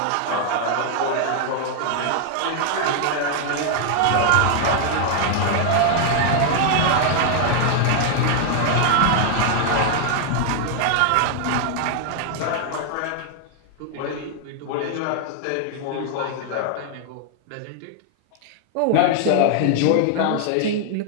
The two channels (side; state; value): both; different; correlation 0.00